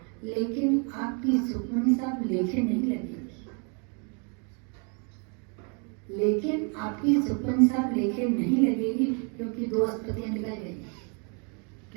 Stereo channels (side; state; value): left; quieter; 36.8 dB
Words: लेकिन आपकी सुखमनी साहब लेखे नहीं लगेगी। लेकिन आपकी सुखमनी साहब लेखे नहीं लगेगी क्योंकि 2 अस्पतियां निकल गई।